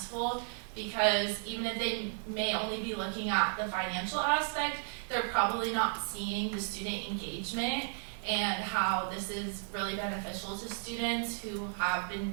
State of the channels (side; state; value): left; silent; 55 dB below the other